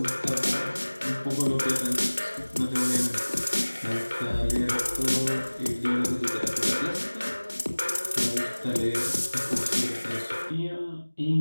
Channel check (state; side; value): inverted; both; correlation -1.00